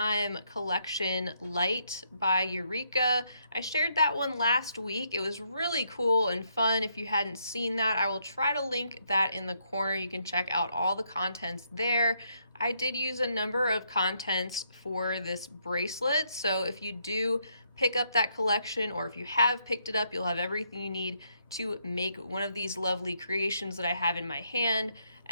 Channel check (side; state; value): both; inverted; correlation -0.75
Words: collection Light by Eureka. I shared that one last week. It was really cool and fun. If you hadn't seen that, I will try to link that in the corner. You can check out all the contents there. I did use a number of contents for this bracelet, so if you do pick up that collection, or if you have picked it up, you'll have everything you need to make one of these lovely creations that I have in my hand.